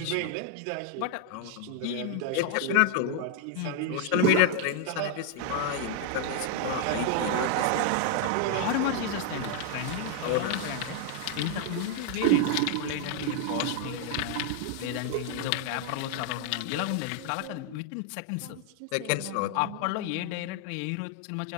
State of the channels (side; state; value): both; different; correlation 0.00